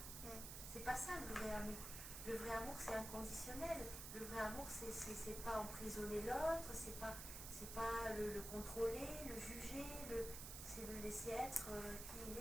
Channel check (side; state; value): right; noise; hiss, 7 dB below the sound